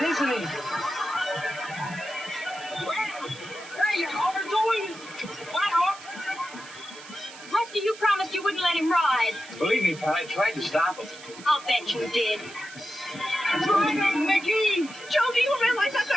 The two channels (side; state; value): right; noise; hiss, 17 dB below the sound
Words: isn't he? Hey, you're overdoing it. Believe me, Pat, I tried to stop him. I'll bet you did. Ryder, Mickey! Joe, do you realize that